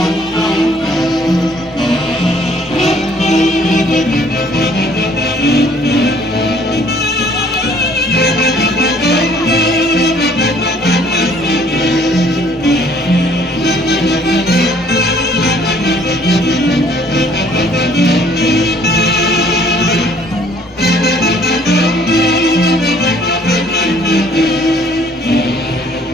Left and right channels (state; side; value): normal; both; correlation 0.59